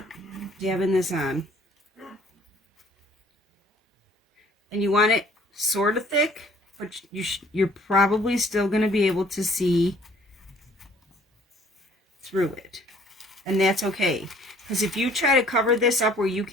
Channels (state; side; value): normal; both; correlation 0.57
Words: dabbing this on. And you want it sort of thick, but you're probably still gonna be able to see through it. And that's okay. Because if you try to cover this up where you